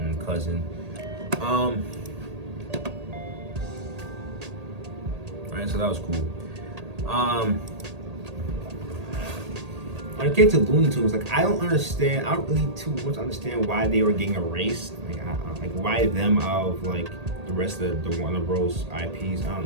cousin. Right, so that was cool. When it came to Looney Tunes, like I don't really too much understand why they were getting erased. Like why them out of like the rest of the Warner Bros. IPs. I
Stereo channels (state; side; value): late; left; 1.8 ms